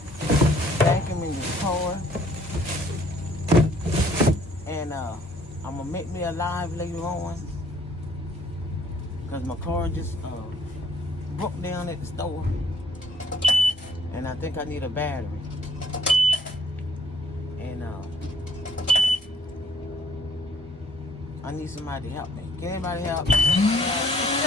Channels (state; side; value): normal; both; correlation 0.62